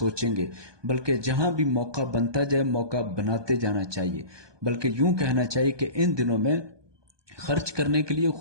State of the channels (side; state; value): left; late; 1.2 ms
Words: گے، بلکہ جہاں بھی موقع بنتا جائے موقع بناتے جانا چاہیے۔ بلکہ یوں کہنا چاہیے کہ ان دنوں میں خرچ کرنے کے لیے